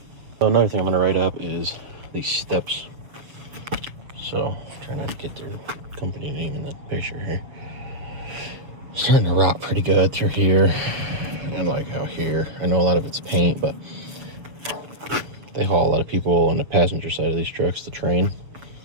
So another thing I'm going to write up is these steps. So trying not to get their company name in the picture here. It's starting to rot pretty good through here and like out here. I know a lot of it's paint, but they haul a lot of people on the passenger side of these trucks to train.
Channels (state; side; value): late; left; 7.0 ms